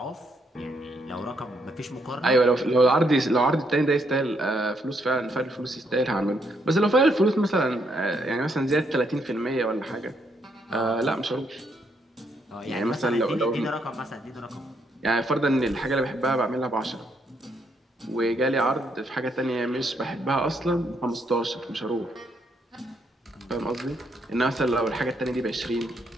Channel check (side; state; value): both; normal; correlation 0.74